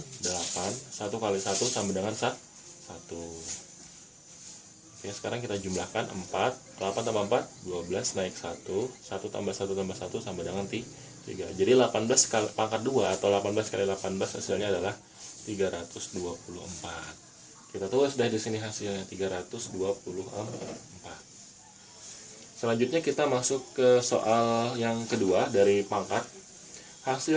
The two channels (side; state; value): both; identical; correlation 1.00